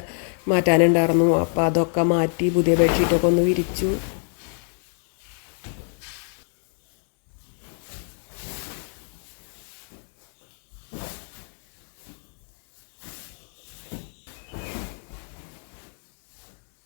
മാറ്റാനുണ്ടായിരുന്നു. അപ്പോൾ അതൊക്കെ മാറ്റി പുതിയ ബെഡ്ഷീറ്റൊക്കെ ഒന്ന് വിരിച്ചു.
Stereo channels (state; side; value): silent; right; digital silence